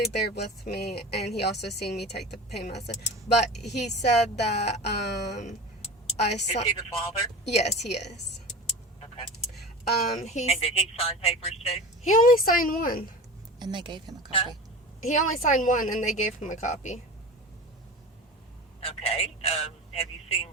there with me, and he also seen me take the pain medicine. But he said that I Is saw. he the father? Yes, he is. Okay. He's And did he sign papers too? he only signed one. And they gave him a Huh? copy. He only signed one, and they gave him a copy. Okay. Have you seen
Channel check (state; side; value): normal; both; correlation 0.32